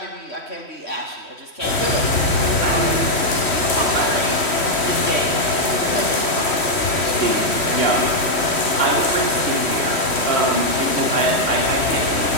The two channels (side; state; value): right; late; 3.1 ms